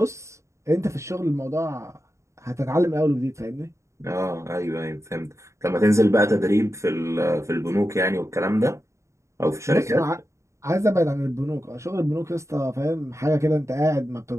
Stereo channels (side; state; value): left; late; 0.14 ms